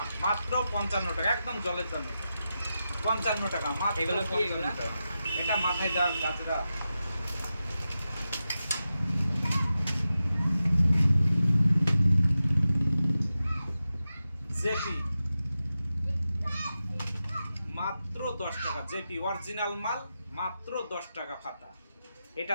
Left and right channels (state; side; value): inverted; both; correlation -0.91